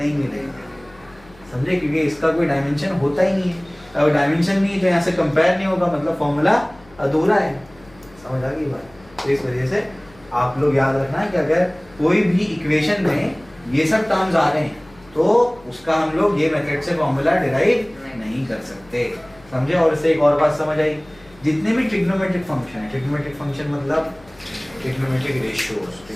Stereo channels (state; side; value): noise; left; hum, 26 dB below the sound